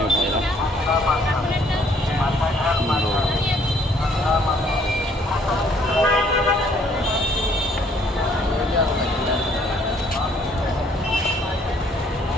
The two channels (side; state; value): both; normal; correlation 0.63